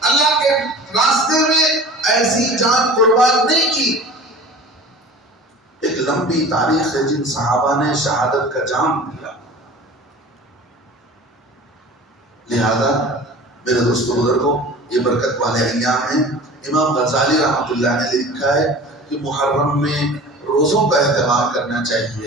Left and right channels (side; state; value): both; normal; correlation 0.40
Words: اللہ کے راستے میں ایسی جان قربان نہیں کی. ایک لمبی تاریخ ہے جن صحابہ نے شہادت کا جام دیا. لہذا میرے دوستو بزرگوں یہ برکت والے ایام ہیں. امام غزالی رحمۃ اللہ نے لکھا ہے کہ محرم میں روزوں کا اہتمام کرنا